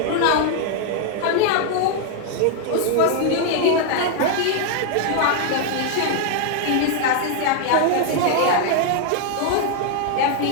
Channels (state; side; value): different; both; correlation 0.00